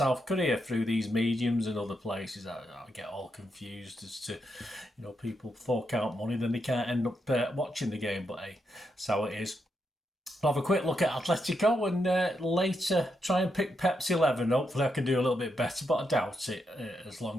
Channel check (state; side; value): normal; both; correlation 0.82